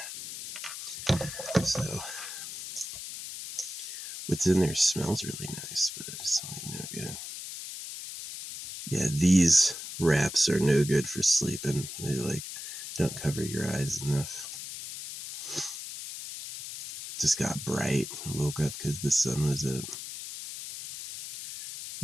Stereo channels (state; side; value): noise; left; hiss, 9 dB below the sound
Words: So what's in there smells really nice, but it's like no good. Yeah, these wraps are no good for sleeping. They like don't cover your eyes enough. It just got bright. I woke up because the sun was up.